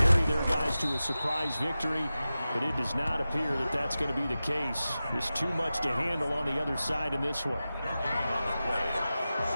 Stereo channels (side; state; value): both; inverted; correlation -0.94